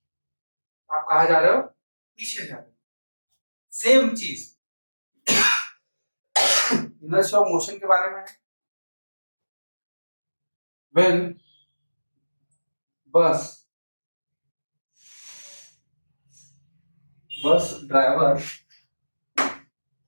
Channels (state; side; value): inverted; both; correlation -1.00